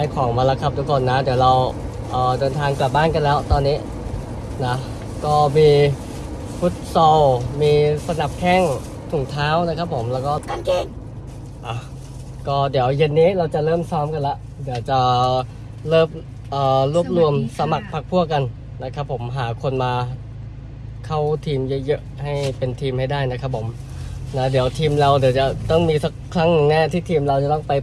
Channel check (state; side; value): identical; both; correlation 1.00